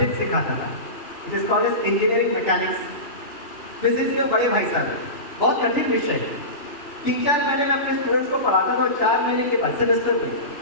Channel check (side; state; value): right; late; 3.4 ms